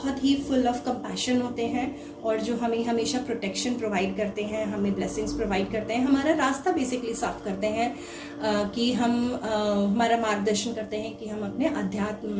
ही फुल ऑफ कंपैशन होते हैं, और जो हमें हमेशा प्रोटेक्शन प्रोवाइड करते हैं, हमें ब्लेसिंग्स प्रोवाइड करते हैं, हमारा रास्ता बेसिकली साफ करते हैं कि हम हमारा मार्गदर्शन करते हैं कि हम अपने अध्यात्म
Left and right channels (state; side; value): identical; both; correlation 1.00